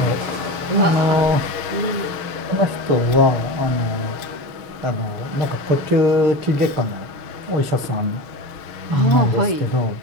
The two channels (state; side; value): late; left; 6.4 ms